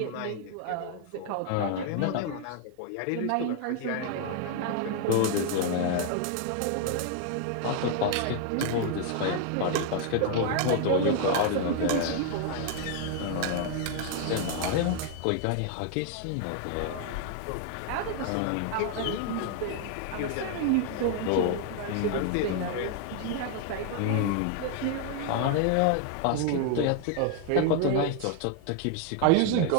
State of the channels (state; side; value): different; both; correlation 0.00